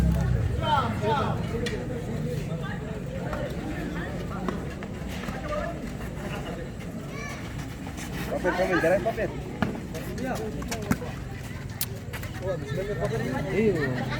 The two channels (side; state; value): both; identical; correlation 1.00